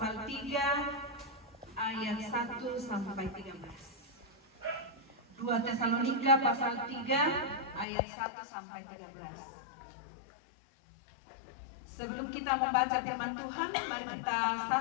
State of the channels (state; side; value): drops out; right; at 7.9 s